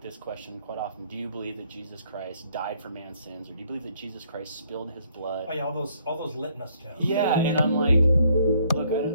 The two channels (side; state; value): both; inverted; correlation -0.66